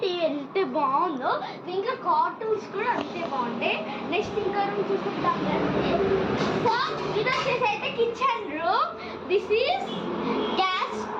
టీవీ ఎంత బాగుందో. ఇంకా కార్టూన్స్ కూడా అంతే బాగుంటాయి. నెక్స్ట్ ఇంకా రూమ్ చూసుకుంటాం కదండి. సో ఇది వచ్చేసి అయితే kitchen room. This is gas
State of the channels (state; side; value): identical; both; correlation 1.00